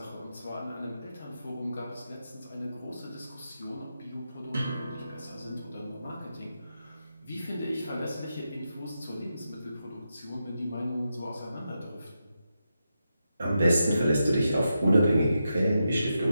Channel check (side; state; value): both; inverted; correlation -0.87